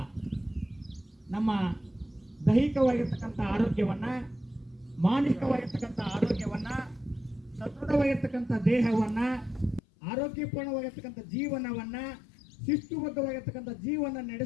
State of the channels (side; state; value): right; drops out; at 9.8 s